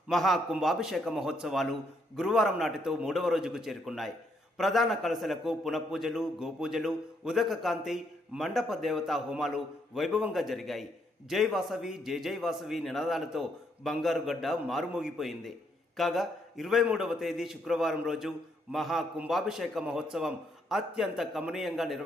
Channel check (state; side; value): normal; both; correlation 0.74